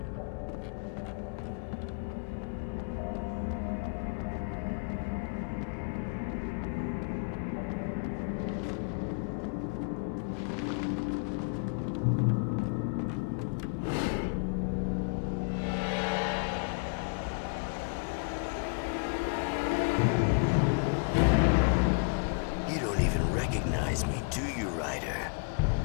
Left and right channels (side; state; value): right; quieter; 37.7 dB